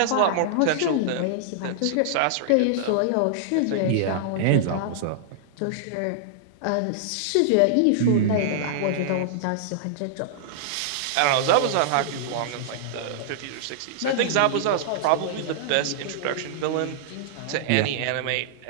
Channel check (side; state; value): both; different; correlation -0.01